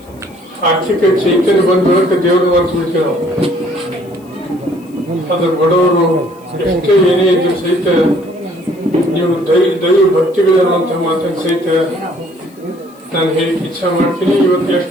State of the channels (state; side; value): noise; left; hiss, 29 dB below the sound